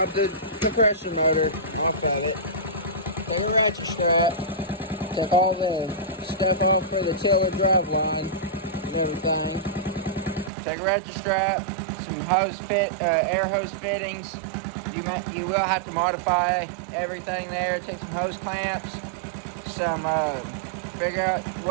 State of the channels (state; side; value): drops out; left; at 10.5 s